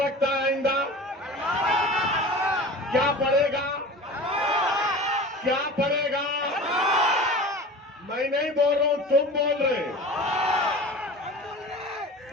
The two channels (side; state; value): both; normal; correlation 0.36